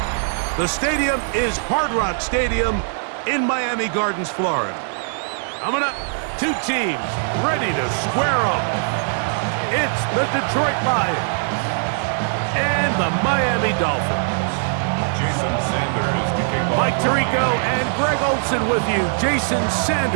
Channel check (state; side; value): silent; left; digital silence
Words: The stadium is Hard Rock Stadium in Miami Gardens, Florida. Coming up, two teams ready to square off. It's the Detroit Lions and the Miami Dolphins. Jason Sanders to kick off. Mike Tirico and Greg Olsen with you. Jason